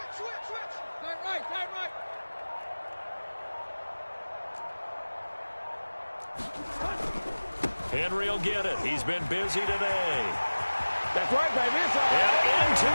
Henry will get it. He's been busy today. That's right, baby. And into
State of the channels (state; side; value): inverted; both; correlation -1.00